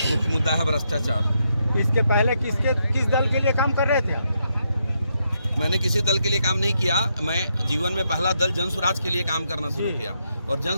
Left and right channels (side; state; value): both; inverted; correlation -0.80